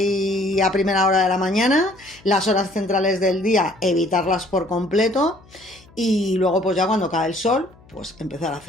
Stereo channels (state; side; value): noise; left; hum, 26 dB below the sound